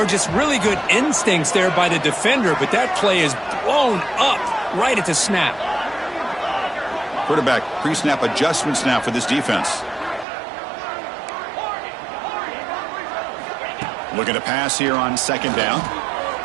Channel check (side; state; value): left; drops out; at 10.2 s